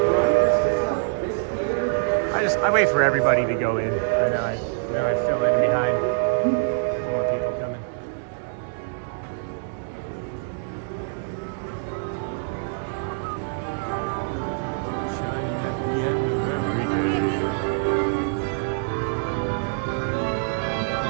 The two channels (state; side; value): silent; left; digital silence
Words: I wait for everybody to go in, and then I fill in behind.